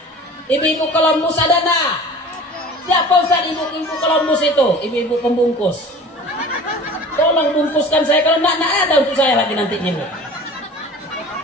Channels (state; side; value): normal; both; correlation 0.41